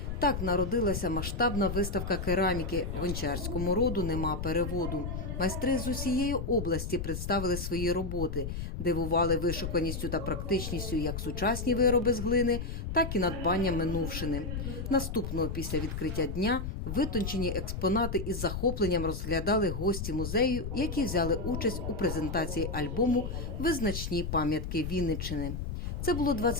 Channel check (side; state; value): left; noise; rumble, 5 dB below the sound